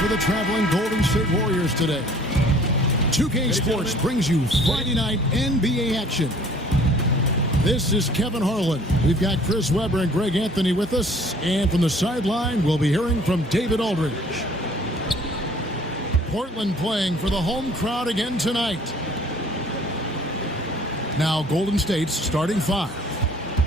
the traveling Golden State Warriors today. 2K Sports brings you Friday night NBA action. This is Kevin Harlan. We've got Chris Webber and Greg Anthony with us. And from the sideline, we'll be hearing from David Aldridge. Portland playing for the home crowd again tonight. Now Golden State's starting five.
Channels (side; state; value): both; normal; correlation 0.54